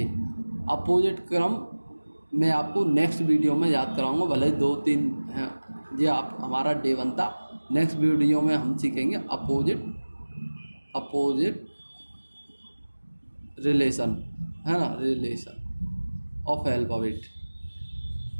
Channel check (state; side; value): inverted; both; correlation -1.00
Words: अपोजिट क्रम मैं आपको नेक्स्ट वीडियो में याद कराऊंगा, भले 2-3 हैं ये आप हमारा डे 1 था। नेक्स्ट वीडियो में हम सीखेंगे अपोजिट रिलेशन, है ना, रिलेशन ऑफ अल्फ़ाबेट।